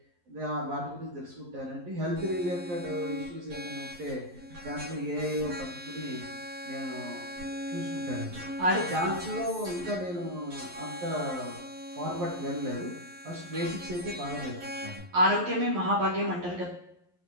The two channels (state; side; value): late; left; 11 ms